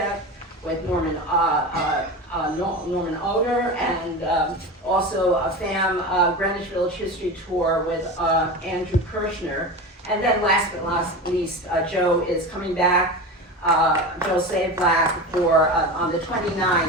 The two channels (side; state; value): both; normal; correlation 0.27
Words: with Norman Oder, and also a FAM Greenwich Village History Tour with Andrew Kirshner. And then last but not least, Joe is coming back, Joe Savlack, for on the